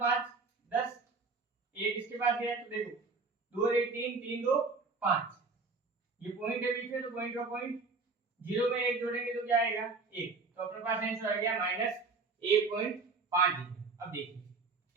10, 1 इसके पास गया तो देखो 2 1 3, 3 2 5। ये पॉइंट है बीच में, तो पॉइंट का पॉइंट 0 में 1 जोड़ेंगे तो क्या आएगा 1। तो अपने पास आंसर आ गया -1.50। अब देखिए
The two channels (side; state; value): left; quieter; 4.2 dB